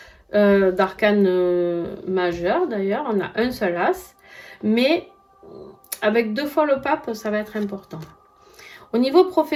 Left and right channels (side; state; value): both; identical; correlation 1.00